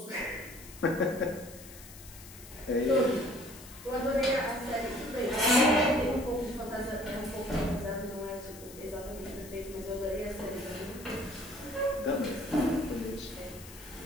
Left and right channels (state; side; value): noise; left; hiss, 17 dB below the sound